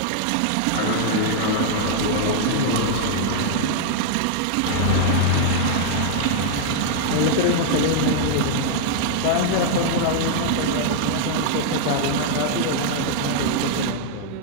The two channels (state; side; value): different; both; correlation -0.01